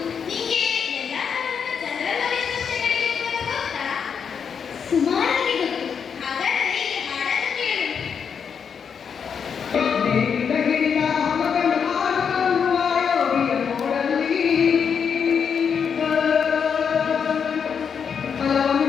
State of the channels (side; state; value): right; quieter; 6.8 dB